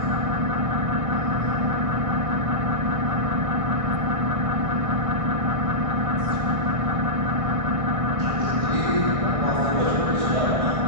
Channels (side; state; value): left; late; 1.6 ms